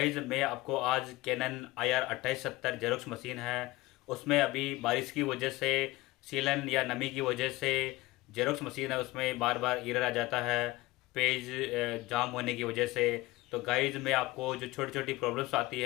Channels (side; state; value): right; quieter; 19.6 dB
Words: मैं आपको आज कैनन IR 2870 जेरोक्स मशीन है, उसमें अभी बारिश की वजह से, सीलन या नमी की वजह से जेरोक्स मशीन है उसमें बार बार एरर आ जाता है, पेज जाम होने की वजह से। तो गाइज मैं आपको जो छोटी छोटी प्रॉब्लम्स आती